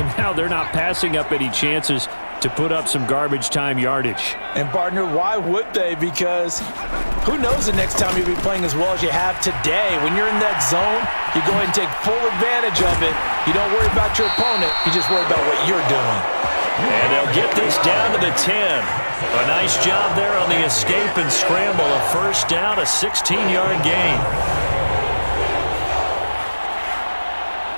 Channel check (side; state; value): both; inverted; correlation -1.00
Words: now they're not passing up any chances to put up some garbage time yardage. And, partner, why would they? Because who knows the next time you'll be playing as well as you have today. When you're in that zone, you go ahead and take full advantage of it. You don't worry about your opponent. You just worry about what you're doing. And they'll get this down to the 10. A nice job there on the escape and scramble. A first down, a 16-yard gain.